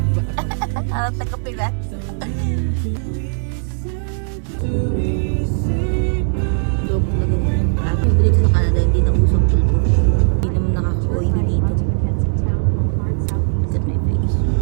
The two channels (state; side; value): silent; left; digital silence